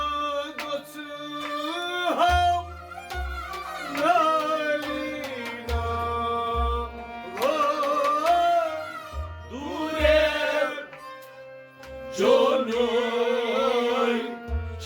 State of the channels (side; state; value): both; identical; correlation 1.00